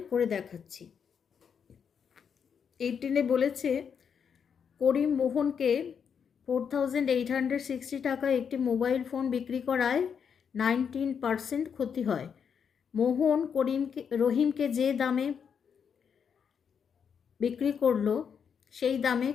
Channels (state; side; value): quieter; right; 7.1 dB